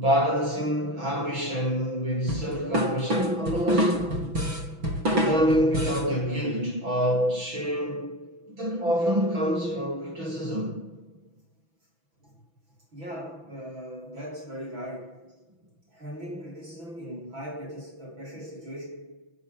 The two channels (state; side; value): late; left; 6.1 ms